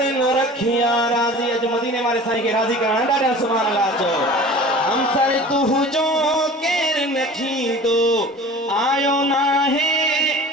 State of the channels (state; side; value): normal; both; correlation 0.41